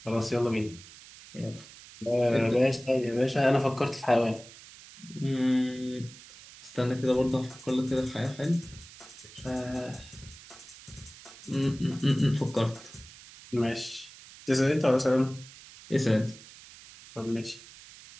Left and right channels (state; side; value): noise; right; hiss, 19 dB below the sound